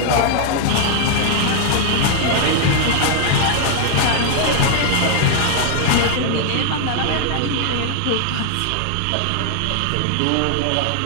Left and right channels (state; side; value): different; both; correlation 0.00